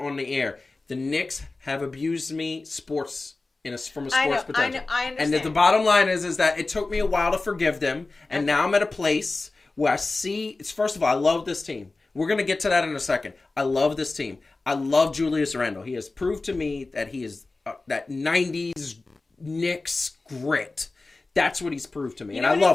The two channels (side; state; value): right; quieter; 3.4 dB